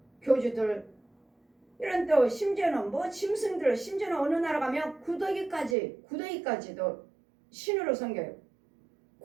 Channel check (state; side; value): drops out; left; at 5.8 s